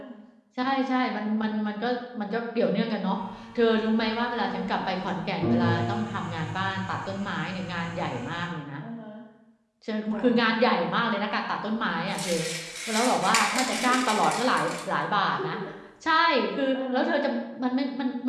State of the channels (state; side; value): identical; both; correlation 1.00